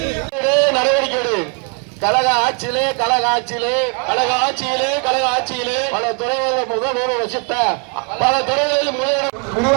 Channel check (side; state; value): left; quieter; 37.4 dB